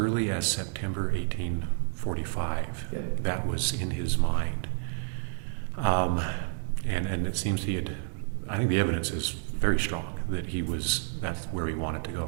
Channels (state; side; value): silent; left; digital silence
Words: as September 1845, That was in his mind. And it seems I think the evidence is very strong that that's where he wanted to